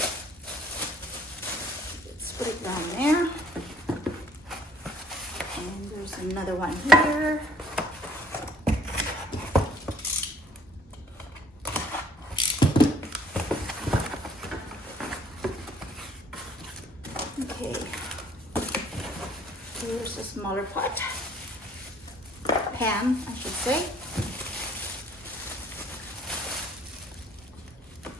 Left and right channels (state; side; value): normal; both; correlation 0.61